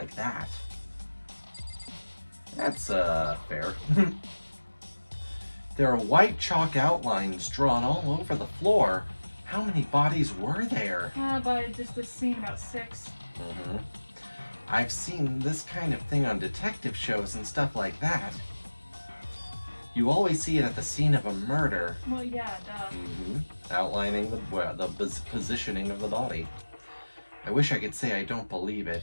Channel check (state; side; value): inverted; both; correlation -1.00